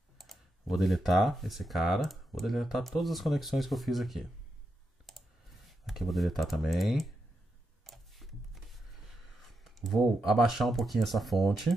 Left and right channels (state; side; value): normal; both; correlation 0.85